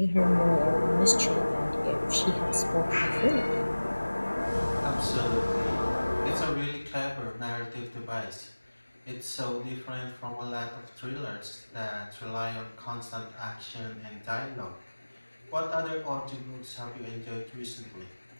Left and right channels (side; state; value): both; inverted; correlation -1.00